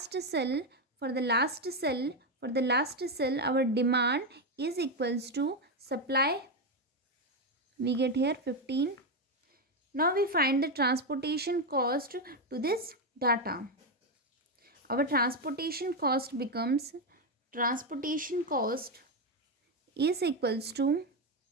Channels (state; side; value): normal; both; correlation 0.08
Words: cell, our demand is equals to supply. We get here 15. Now we find the transportation cost to this data. Our transportation cost is equals to